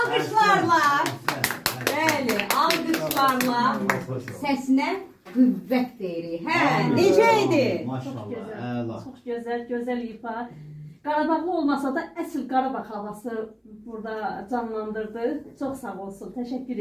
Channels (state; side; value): identical; both; correlation 1.00